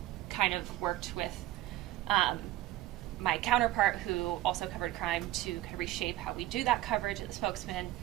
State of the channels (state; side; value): quieter; left; 14.9 dB